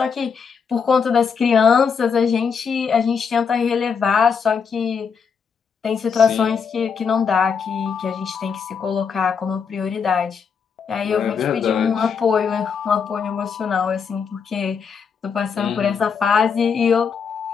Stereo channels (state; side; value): quieter; right; 6.1 dB